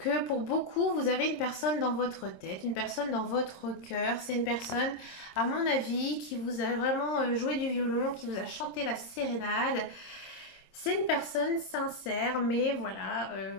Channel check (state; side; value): late; right; 26 ms